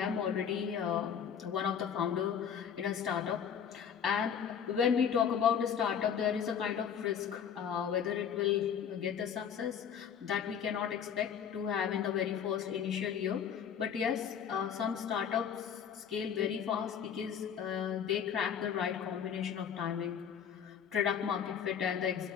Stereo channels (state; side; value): quieter; right; 8.0 dB